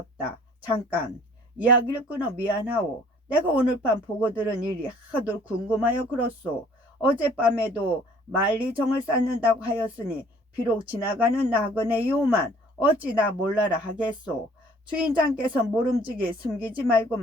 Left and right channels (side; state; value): both; normal; correlation 0.55